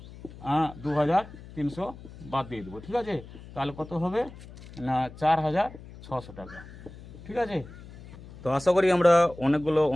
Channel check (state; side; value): noise; left; hum, 17 dB below the sound